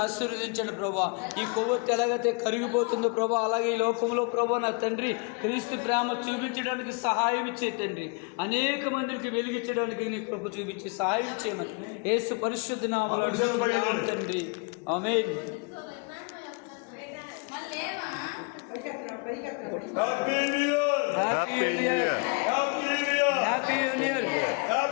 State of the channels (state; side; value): quieter; right; 33.5 dB